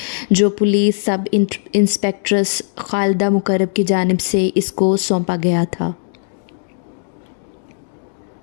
جو پولیس سب انسپکٹرس خالدہ مقرب کی جانب سے اس کو سونپا گیا تھا۔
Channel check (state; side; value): silent; right; digital silence